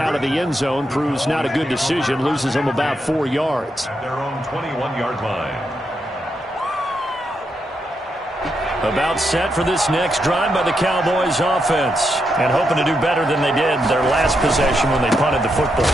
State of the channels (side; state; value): both; normal; correlation 0.82